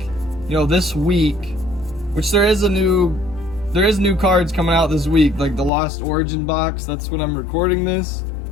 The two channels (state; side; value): drops out; right; at 5.7 s